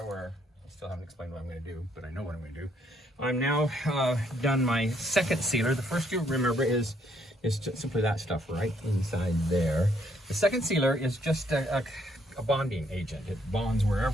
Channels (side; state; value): both; normal; correlation 0.70